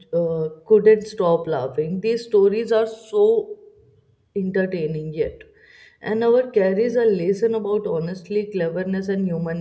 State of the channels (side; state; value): both; identical; correlation 1.00